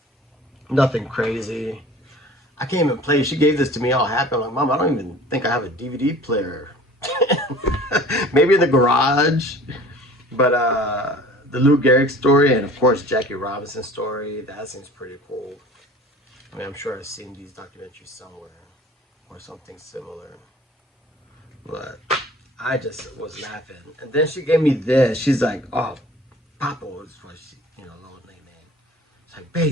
Nothing crazy. I can't even play. She gave this to me all happy. I'm like, Mom, I don't even think I have a DVD player. Maybe in the garage. But the Lou Gehrig story, and of course Jackie Robinson story, that seems pretty cool. I mean, I'm sure I've seen these documentaries somewhere or something similar. But I just was laughing. And then she gave me this. She's like, oh, Papa was what she, little nickname. It's like,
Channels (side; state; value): both; normal; correlation 0.45